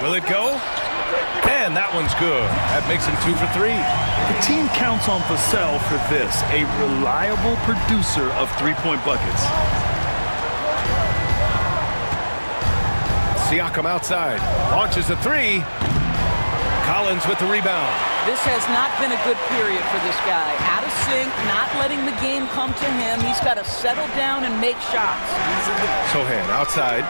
Will it go? And that one's good. That makes him 2 for 3. The team counts on Vassell for this, a reliable producer of 3-point buckets. Siakam outside. Launches a 3. Collins with the rebound. This has not been a good period for this guy. Out of sync, not letting the game come to him. He's got to settle down and make shots. Sohan outside.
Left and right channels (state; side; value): inverted; both; correlation -1.00